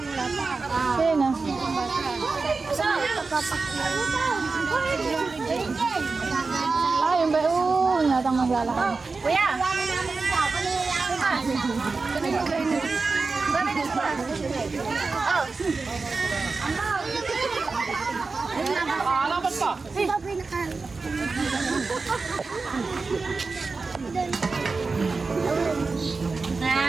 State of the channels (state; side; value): quieter; left; 4.1 dB